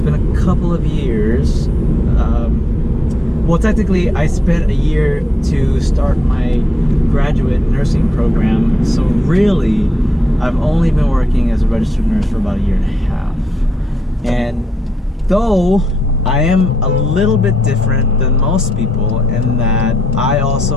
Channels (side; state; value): both; normal; correlation 0.81